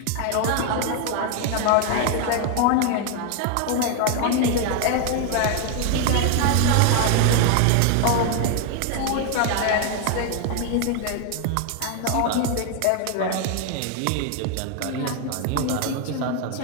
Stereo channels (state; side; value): different; both; correlation 0.01